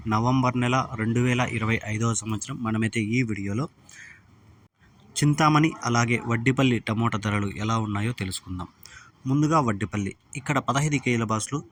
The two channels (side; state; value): both; identical; correlation 1.00